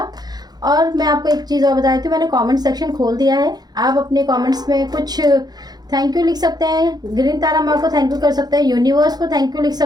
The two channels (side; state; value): left; late; 0.19 ms